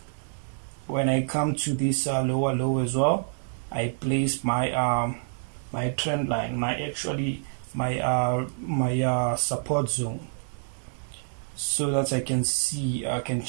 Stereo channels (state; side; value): silent; left; 60 dB below the other